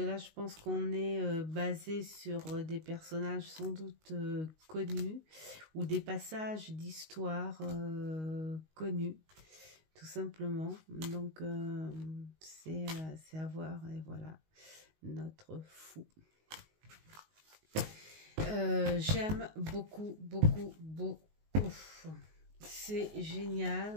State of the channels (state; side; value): late; left; 19 ms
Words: je pense qu'on est basé sur des personnages sans doute connus ou des passages d'histoire connus, tout simplement. Donc c'est à voir, et voilà, notre fou. J'aime beaucoup. C'est